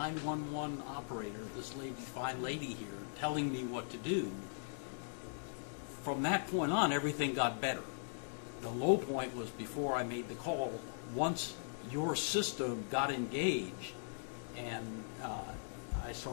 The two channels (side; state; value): right; silent; digital silence